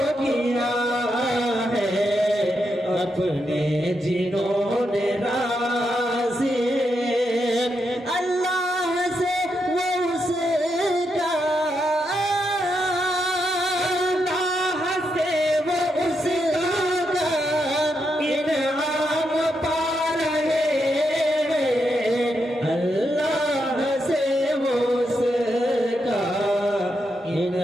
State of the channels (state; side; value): normal; both; correlation 0.83